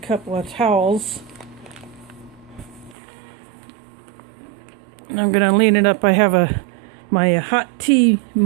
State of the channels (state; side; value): drops out; left; at 3.0 s